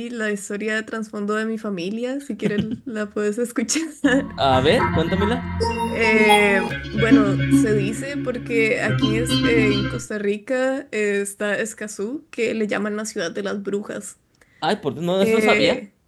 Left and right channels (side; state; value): both; identical; correlation 1.00